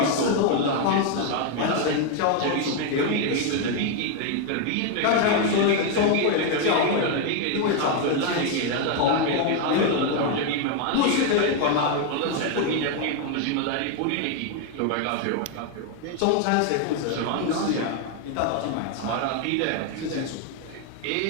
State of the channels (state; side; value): different; both; correlation 0.01